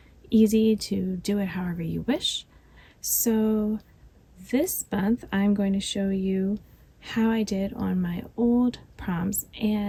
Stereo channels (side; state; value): both; identical; correlation 1.00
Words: easy to do it however you wish. So this month I'm going to show you how I did on my old prompts